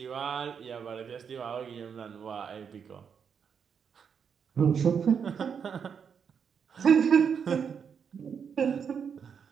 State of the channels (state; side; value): quieter; left; 6.9 dB